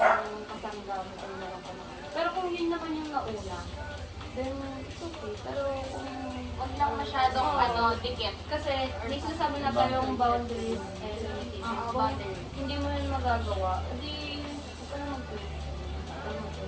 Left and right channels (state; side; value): identical; both; correlation 1.00